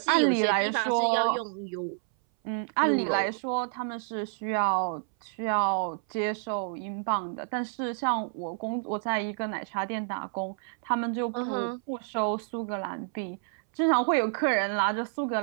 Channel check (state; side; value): silent; left; 59 dB below the other